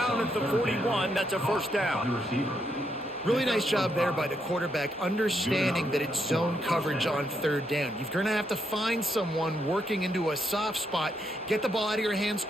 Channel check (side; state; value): both; normal; correlation 0.78